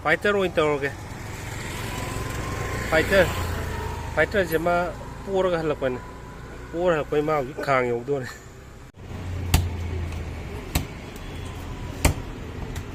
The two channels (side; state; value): both; identical; correlation 1.00